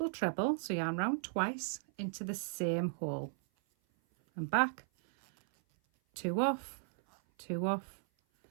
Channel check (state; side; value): silent; left; 54 dB below the other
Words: treble, so yarn round twice into the same hole and back, 2 off, 2 off,